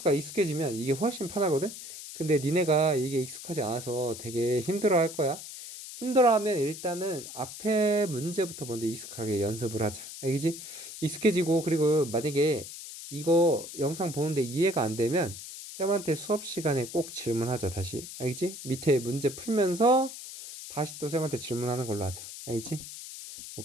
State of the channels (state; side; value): noise; left; hiss, 11 dB below the sound